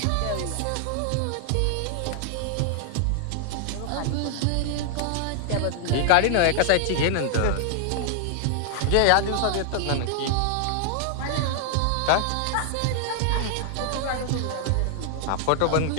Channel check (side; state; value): both; different; correlation -0.01